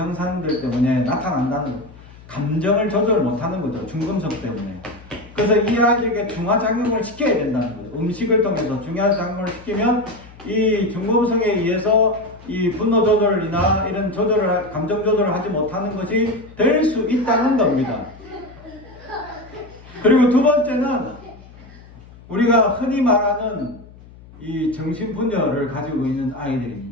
때문에 나타난다는 거예요. 감정을 조절 못하는 거죠. 중금속 때문에. 그래서 이 아이들에게 중화작용을 시켜야 된다는 거예요. 음식을 통해서 중화작용을 시키면 이 중금속에 의해서 이 분노 조절이나 이런 감정 조절을 하지 못하는 것이 될 수 있다는 겁니다. 그리고 두 번째는 우리가 흔히 말하는 이 정신분열을 가지고 있는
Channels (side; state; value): left; noise; hum, 21 dB below the sound